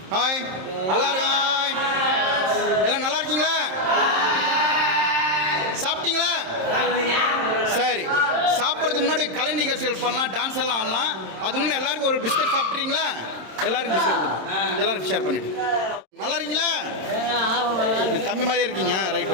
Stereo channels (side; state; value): left; late; 27 ms